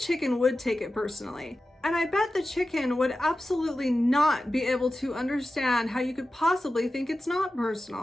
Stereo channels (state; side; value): normal; both; correlation 0.94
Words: chicken would take it personally. And I bet the chicken would absolutely not be able to understand how you could possibly think it's not